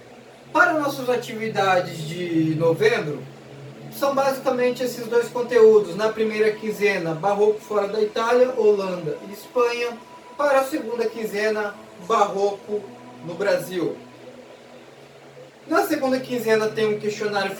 Para nossas atividades de novembro, são basicamente esses dois conteúdos. Na primeira quinzena, Barroco fora da Itália, Holanda e Espanha. Para a segunda quinzena, Barroco no Brasil. Na segunda quinzena tem um questionário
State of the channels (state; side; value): identical; both; correlation 1.00